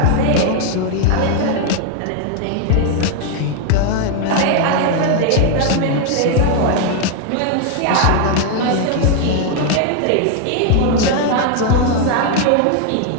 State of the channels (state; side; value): different; both; correlation 0.01